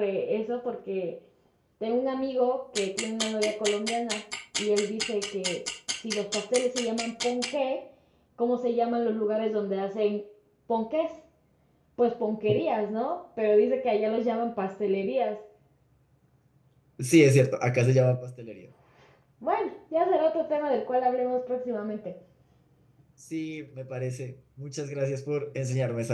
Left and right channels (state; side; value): identical; both; correlation 1.00